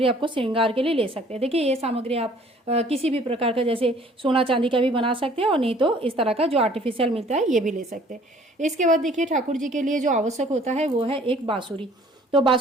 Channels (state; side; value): normal; both; correlation 0.55